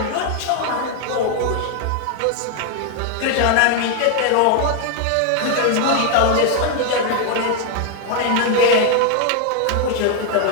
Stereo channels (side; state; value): both; different; correlation 0.00